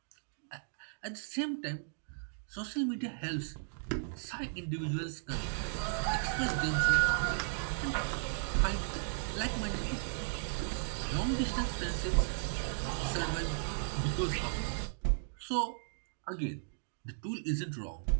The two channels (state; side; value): silent; left; digital silence